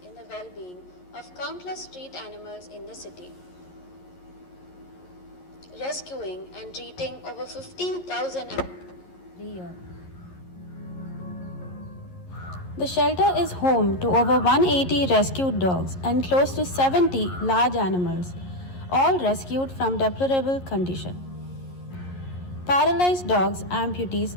in the well-being of countless street animals in the city, rescuing and treating over 15,000 animals every year. The shelter is home to over 180 rescued dogs and close to 70 large animals, all rescued from deplorable condition. Paralyzed dogs,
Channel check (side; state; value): right; late; 11 ms